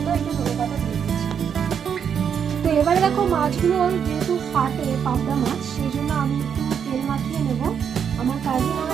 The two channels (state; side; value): quieter; left; 7.6 dB